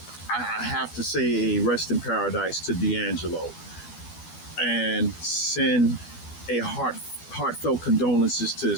have to say a rest in paradise to D'Angelo and send a heartfelt condolences to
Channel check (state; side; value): late; right; 12 ms